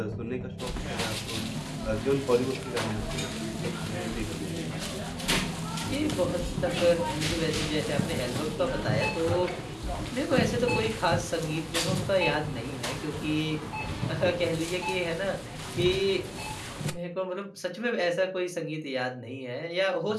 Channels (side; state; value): both; identical; correlation 1.00